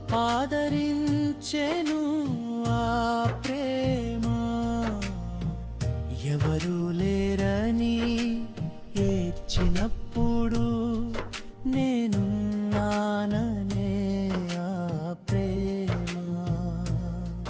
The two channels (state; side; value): identical; both; correlation 1.00